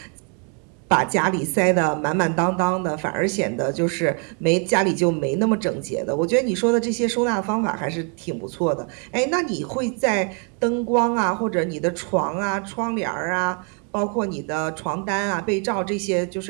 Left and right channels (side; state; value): left; quieter; 38.9 dB